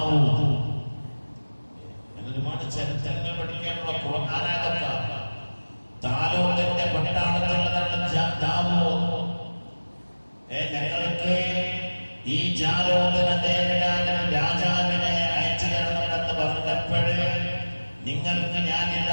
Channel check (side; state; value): both; inverted; correlation -1.00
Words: ഒരുപാട് ചരിത്രങ്ങൾ പഠിക്കാനുള്ള ഖുർആനായതാണ്. താലൂത്തിന്റെ പട്ടണത്തിലുള്ളതാണ് ദാവൂദ്. ഞങ്ങൾക്ക് ഈ ജാലൂത്തിനെ നേരിടാൻ രാജാവിനെ അയച്ചു തരണമെന്ന് പറഞ്ഞപ്പോഴേ നിങ്ങൾക്ക്